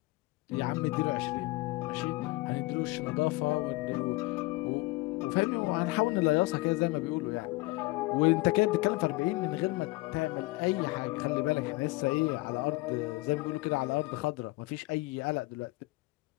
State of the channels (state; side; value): quieter; right; 21.8 dB